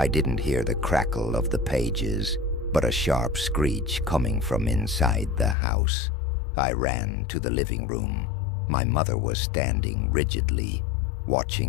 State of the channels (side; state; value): right; drops out; at 5.6 s